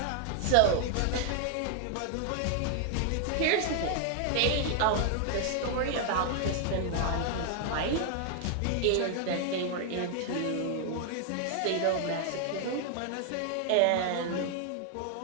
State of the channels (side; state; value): both; different; correlation 0.00